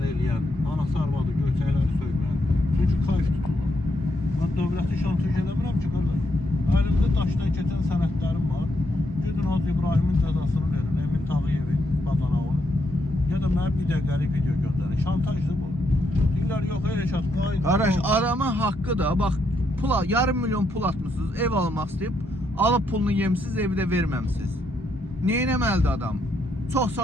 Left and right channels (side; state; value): both; normal; correlation 0.78